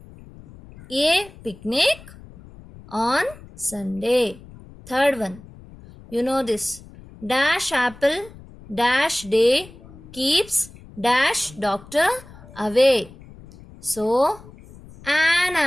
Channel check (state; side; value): noise; left; rumble, 20 dB below the sound